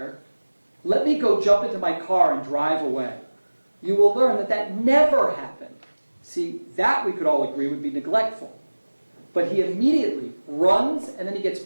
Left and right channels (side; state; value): both; inverted; correlation -1.00